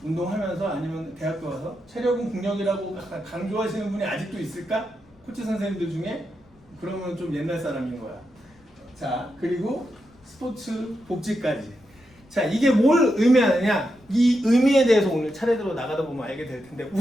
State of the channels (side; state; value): left; noise; rumble, 30 dB below the sound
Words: 운동하면서 아니면 대학교 와서 체력은 국력이라고 강조하시는 분이 아직도 있을까? 코치 선생님들 중에? 그러면 좀 옛날 사람인 거야. 자, 그리고 스포츠 복지까지. 자, 이게 뭘 의미하느냐? 이 의미에 대해서 오늘 차례대로 나가다 보면 알게 될 텐데,